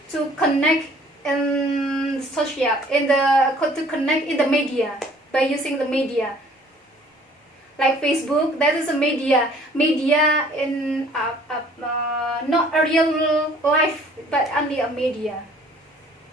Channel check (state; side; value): normal; both; correlation 0.55